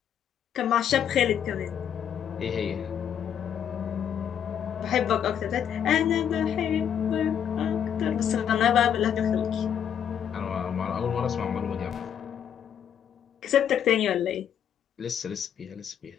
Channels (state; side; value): quieter; right; 8.8 dB